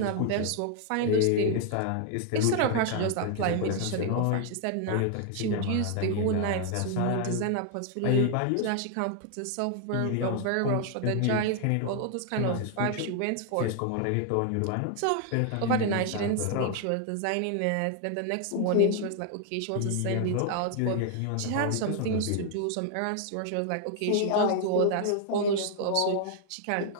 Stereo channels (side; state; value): both; different; correlation 0.00